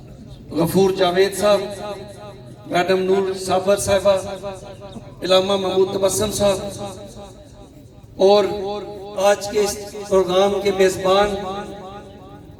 غفور جاوید صاحب، میڈم نور صابر صاحبہ، علامہ محمود تبسم صاحب، اور آج کے اس پروگرام کے میزبان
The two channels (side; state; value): both; identical; correlation 1.00